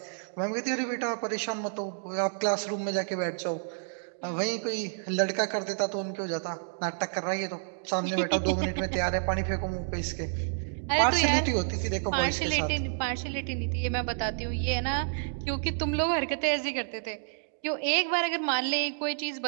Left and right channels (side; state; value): left; silent; digital silence